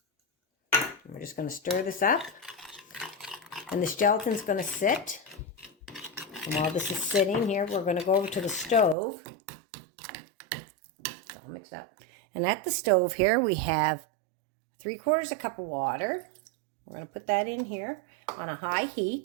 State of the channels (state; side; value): drops out; left; at 9.0 s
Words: And we're just going to stir this up. And this gelatin's going to sit. And while this is sitting here, we're going to go over to the stove. It's all mixed up. And at the stove here, we have 3/4 cup of water. We're going to put that in here on a high